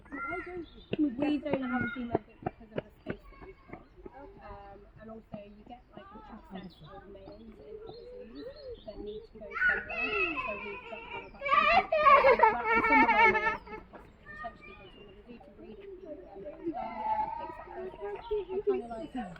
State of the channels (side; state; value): both; identical; correlation 1.00